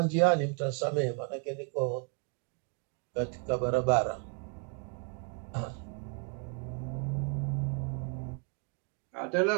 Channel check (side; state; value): left; quieter; 37.8 dB